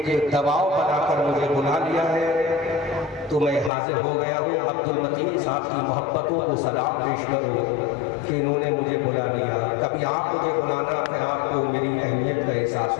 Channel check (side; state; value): right; drops out; at 3.7 s